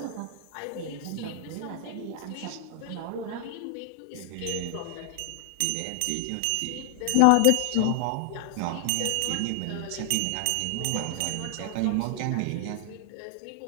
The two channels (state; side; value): different; both; correlation 0.00